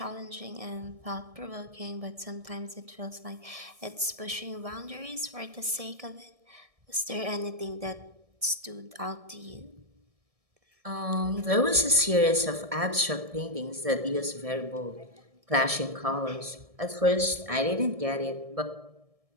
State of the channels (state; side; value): late; left; 1.7 ms